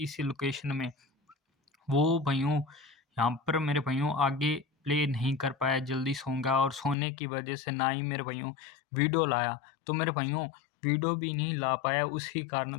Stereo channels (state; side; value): drops out; right; at 7.0 s